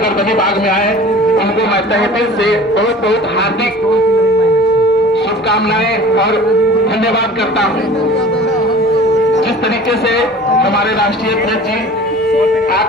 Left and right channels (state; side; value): normal; both; correlation 0.43